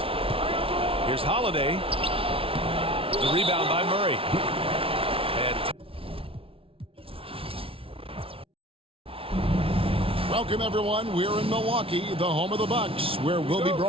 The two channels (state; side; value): late; left; 0.26 ms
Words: Here's Holiday. The rebound by Murray. And welcome, everyone. We're in Milwaukee, the home of the Bucks, where we'll be